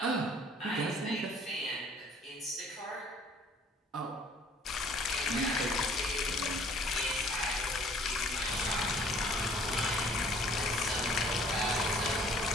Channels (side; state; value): both; normal; correlation 0.55